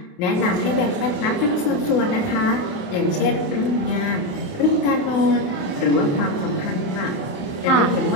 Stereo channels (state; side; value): late; right; 28 ms